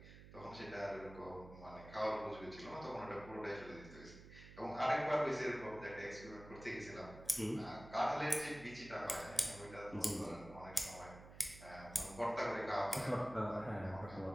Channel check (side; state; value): right; noise; hum, 16 dB below the sound